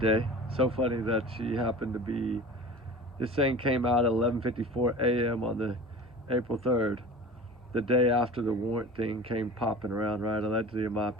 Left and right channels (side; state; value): both; normal; correlation 0.37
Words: So funny that she happened to be, this thing came out at 11:54 a.m. on the April 3rd, the day after the warrant thing came popping around, right? Allegedly, in my